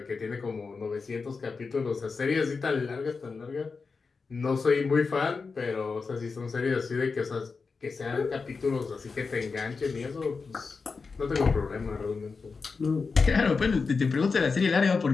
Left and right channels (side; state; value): right; quieter; 4.7 dB